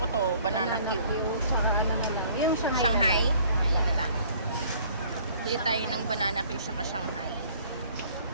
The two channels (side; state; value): both; inverted; correlation -0.56